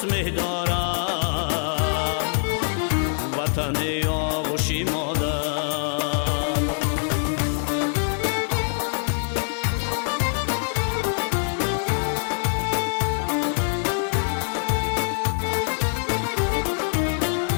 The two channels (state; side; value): silent; right; 62 dB below the other